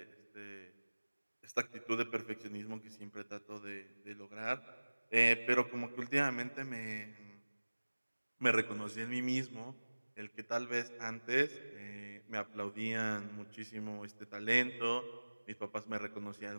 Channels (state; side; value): inverted; both; correlation -1.00